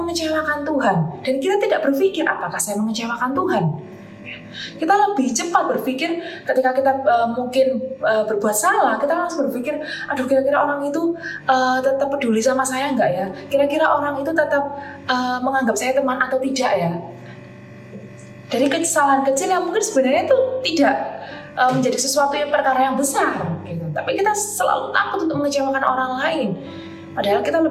Tuhan, dan kita tidak berpikir apakah saya mengecewakan Tuhan. Kita lebih cepat berpikir ketika kita mungkin berbuat salah, kita langsung berpikir, aduh kira-kira orang itu tetap peduli sama saya enggak ya? Kira-kira orang itu tetap menganggap saya teman atau tidak ya? Dari kesalahan kecil yang mungkin sebenarnya itu tidak menjadi sesuatu yang perkara yang besar, gitu. Tapi kita selalu takut untuk mengecewakan orang lain. Padahal kita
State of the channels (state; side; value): identical; both; correlation 1.00